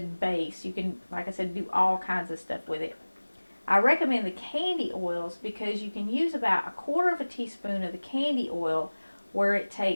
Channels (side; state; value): both; inverted; correlation -1.00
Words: base. You can, like I said, do all kinds of stuff with it. I recommend the candy oils because you can use about 1/4 teaspoon of the candy oil where it